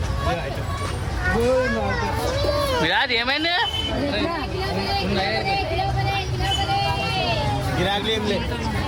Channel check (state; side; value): identical; both; correlation 1.00